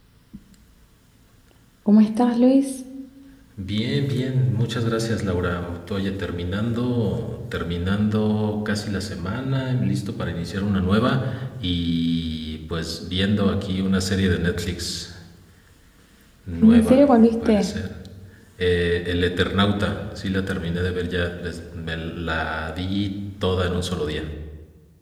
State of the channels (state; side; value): identical; both; correlation 1.00